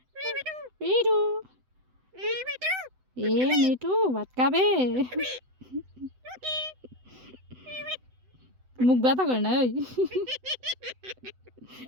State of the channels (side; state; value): left; late; 7.9 ms